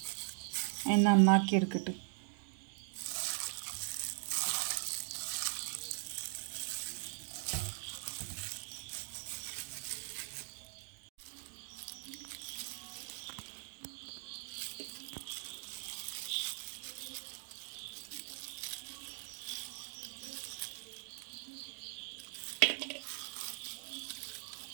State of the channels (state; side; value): silent; left; 51 dB below the other